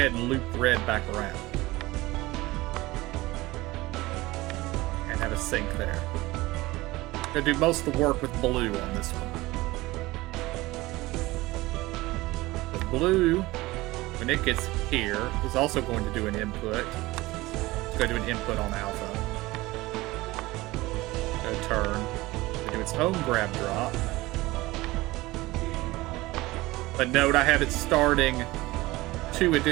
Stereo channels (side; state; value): left; quieter; 19.7 dB